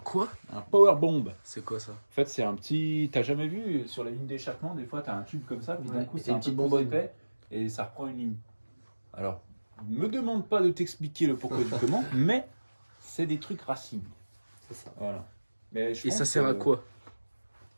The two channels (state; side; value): inverted; both; correlation -1.00